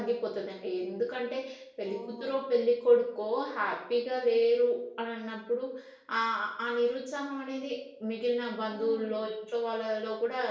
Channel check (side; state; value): both; identical; correlation 1.00